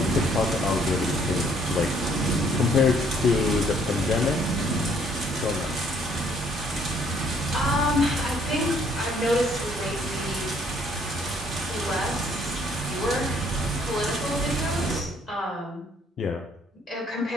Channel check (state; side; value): normal; both; correlation 0.64